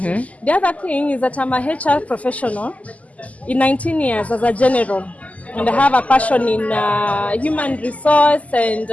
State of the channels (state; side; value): late; right; 0.072 ms